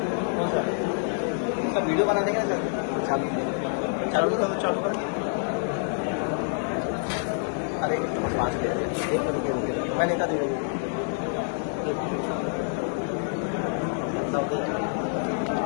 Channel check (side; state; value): right; silent; 60 dB below the other